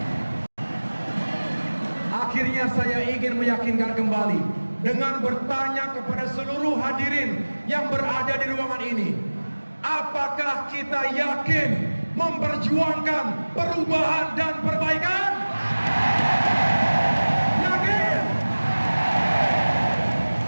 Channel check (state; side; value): inverted; both; correlation -1.00